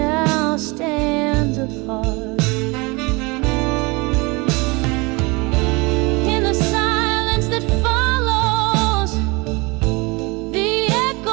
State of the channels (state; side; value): quieter; left; 26.1 dB